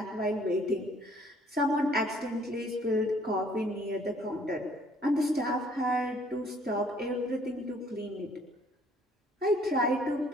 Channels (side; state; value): both; normal; correlation 0.61